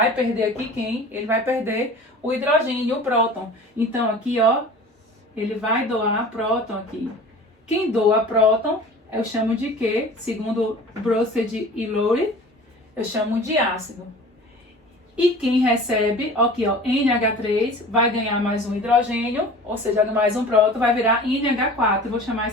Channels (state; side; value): normal; both; correlation 0.41